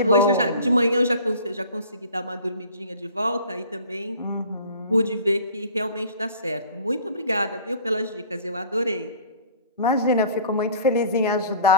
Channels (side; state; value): both; inverted; correlation -0.47